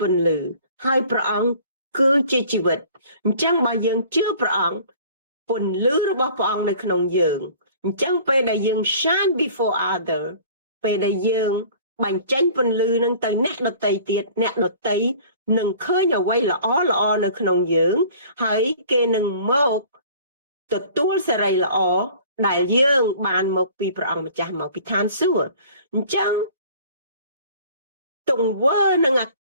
ពន្លឺហើយព្រះអង្គគឺជាជីវិតអញ្ចឹងបើយើងជឿព្រះអង្គពន្លឺរបស់ព្រះអង្គនៅក្នុងយើងអញ្ចឹងពេលដែលយើង shine before other ពេលដែលយើងបញ្ចេញពន្លឺនឹងទៅអ្នកដទៃទៀតអ្នកដទៃនឹងឃើញអ្វីល្អល្អនៅក្នុងយើងហើយគេនឹងមកទទួលសេរីល្អដែលយើងបានមកពីព្រះអង្គម្ចាស់មកពីឋានសួគ៌អញ្ចឹងទង្វើនិងអក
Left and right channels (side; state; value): both; inverted; correlation -0.49